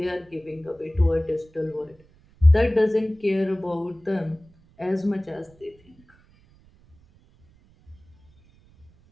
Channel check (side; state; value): right; noise; rumble, 30 dB below the sound